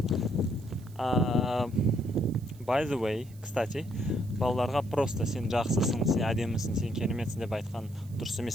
By the way, кстати, балаларға просто сен жақсысың, сен әдемісің, сен кереметсің деп айтқан дұрыс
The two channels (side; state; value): right; noise; hiss, 26 dB below the sound